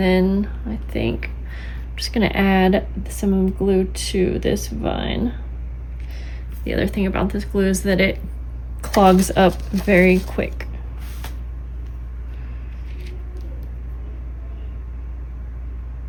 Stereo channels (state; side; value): identical; both; correlation 1.00